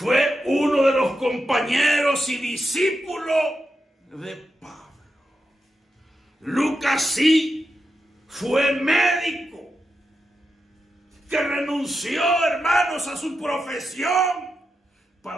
uno de los compañeros y discípulos de Pablo. Lucas sí fue médico que renunció, hermanos, a su profesión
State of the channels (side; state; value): both; normal; correlation 0.87